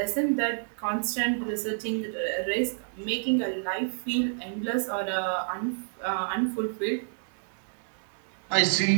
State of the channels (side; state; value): left; silent; digital silence